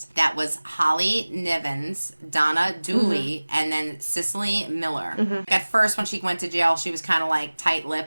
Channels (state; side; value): inverted; both; correlation -1.00